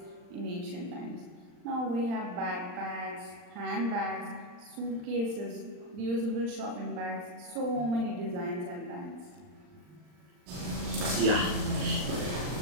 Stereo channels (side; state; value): left; late; 39 ms